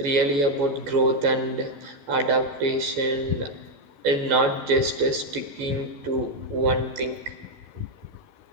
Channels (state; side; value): late; left; 14 ms